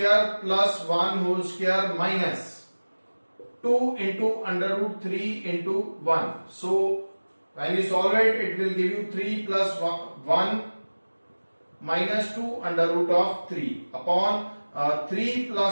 plus 1 whole square minus 2 into under root 3 into 1. So when you solve it, it will give you 3 plus 1 minus 2 under root of 3 upon 3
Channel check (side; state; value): both; inverted; correlation -1.00